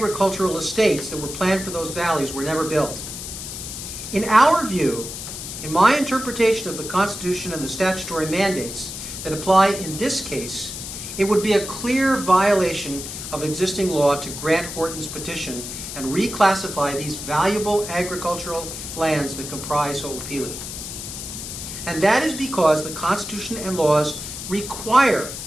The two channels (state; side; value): noise; left; hiss, 8 dB below the sound